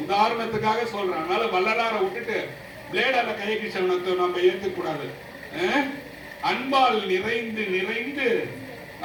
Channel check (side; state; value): both; identical; correlation 1.00